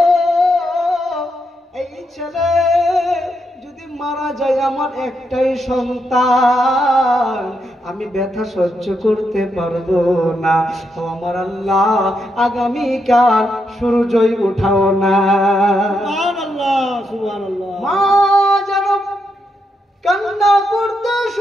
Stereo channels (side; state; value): both; normal; correlation 0.81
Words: এই ছেলে যদি মারা যায় আমার একটাই সন্তান, আমি ব্যথা সহ্য করতে পারবো না। ও আমার আল্লাহ, আগামীকাল সূর্যই উঠাও না। সুবহানাল্লাহ, সুবহানাল্লাহ। মা যেন কান্না করতে